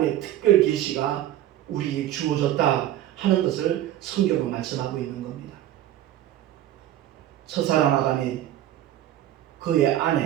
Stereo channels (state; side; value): quieter; left; 12.7 dB